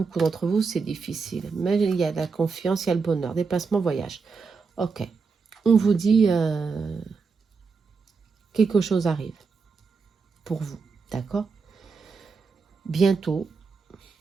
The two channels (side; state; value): left; quieter; 4.9 dB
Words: d'entre vous, c'est difficile. Mais il y a la confiance, il y a le bonheur, déplacement, voyage. Ok, on vous dit quelque chose arrive pour vous, d'accord? Bientôt,